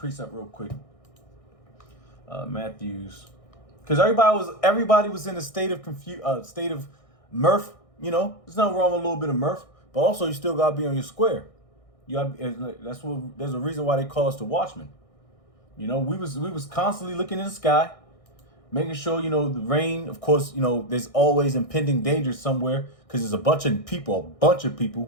real quick. Matthew's, because everybody was in a state of mirth. You know, there's nothing wrong with a little bit of mirth, but also you still gotta be on your square. There's a reason why they call us the watchmen. You know, we was constantly looking in the sky, making sure, you know, the rain, of course, you know, there's always impending danger somewhere because there's a bunch of people,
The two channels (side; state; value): right; late; 1.6 ms